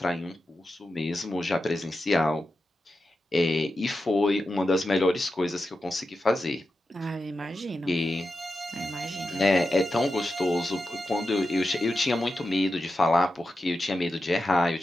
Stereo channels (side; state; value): both; normal; correlation 0.90